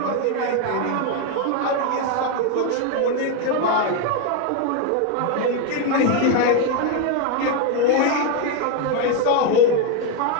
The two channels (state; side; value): different; both; correlation 0.01